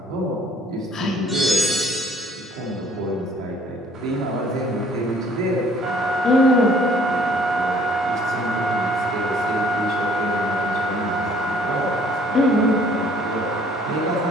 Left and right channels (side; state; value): both; normal; correlation 0.58